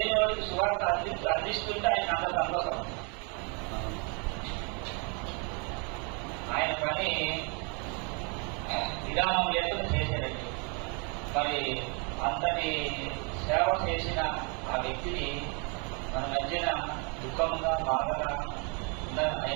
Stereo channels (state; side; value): quieter; left; 34.8 dB